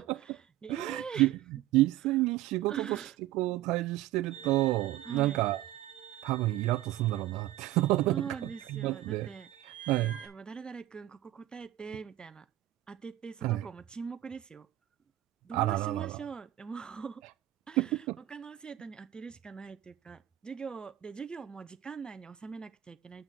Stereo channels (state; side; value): quieter; left; 14.6 dB